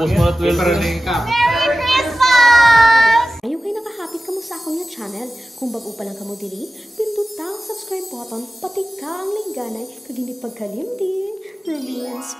mo na 12 Merry Christmas! Ayaw kayo nakahapit ka mo sa akong yung channel. Kung bago pa lang ka mo diri, pindot ang subscribe button, pati ka ang lingganay, kag hindi pagkalimdin.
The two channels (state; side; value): normal; both; correlation 0.95